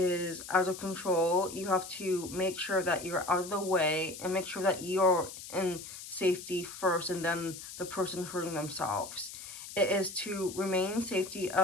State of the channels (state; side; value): noise; left; hiss, 12 dB below the sound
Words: out of control. You have to make sure that you're out of the way and make sure that you're in safety first and then the person hurting themselves. It is to remain safety